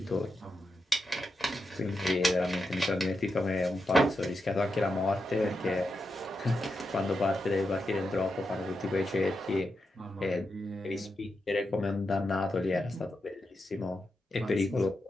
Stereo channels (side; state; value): both; normal; correlation 0.86